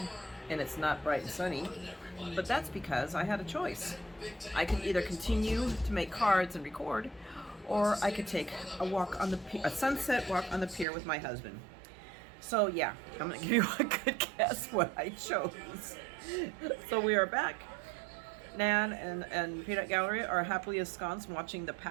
and it's not bright and sunny, but that's because I had a choice. I could either continue to make cards and record, or I could take a walk on a sunset walk on the pier with my husband. So yeah, I'm gonna give you a good guess what I chose. So we are back. Nan and Peanut Gallery are happily ensconced watching the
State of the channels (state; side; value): drops out; left; at 10.9 s